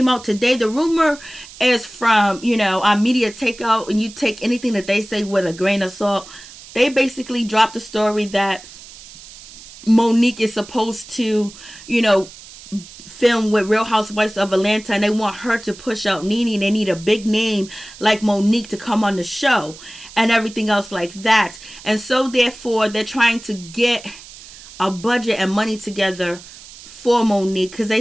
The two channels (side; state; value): right; noise; hiss, 18 dB below the sound